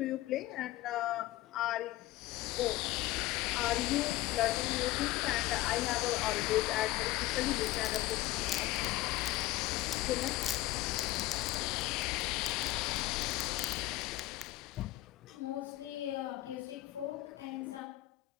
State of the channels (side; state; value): right; quieter; 17.2 dB